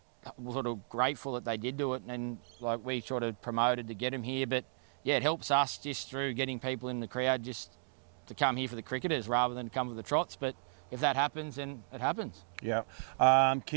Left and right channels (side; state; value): left; silent; digital silence